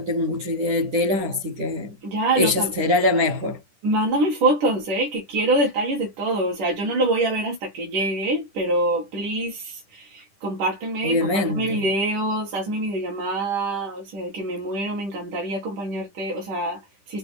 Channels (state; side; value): late; left; 10 ms